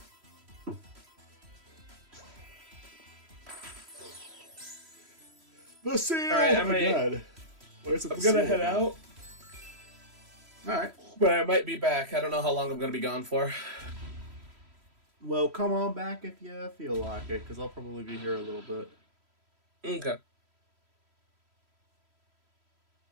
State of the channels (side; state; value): left; late; 3.1 ms